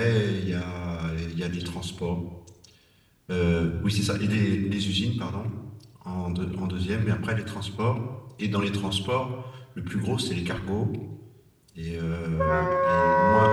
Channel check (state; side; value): identical; both; correlation 1.00